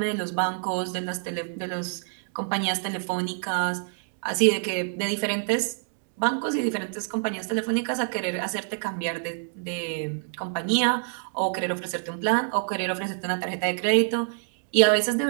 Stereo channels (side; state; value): left; silent; digital silence